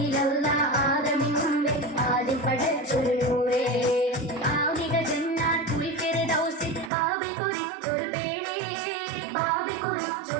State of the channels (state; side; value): drops out; left; at 6.9 s